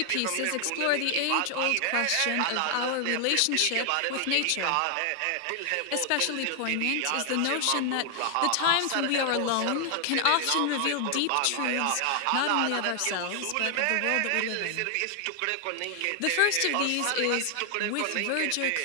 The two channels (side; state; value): both; different; correlation 0.00